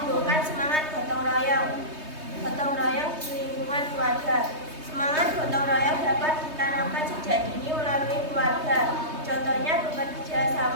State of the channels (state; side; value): late; left; 3.2 ms